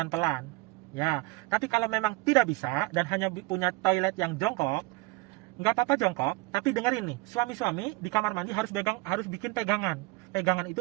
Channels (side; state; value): left; quieter; 22.3 dB